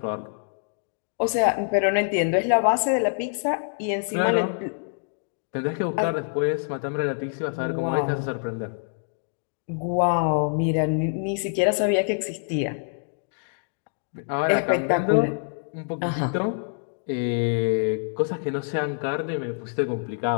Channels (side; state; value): right; silent; digital silence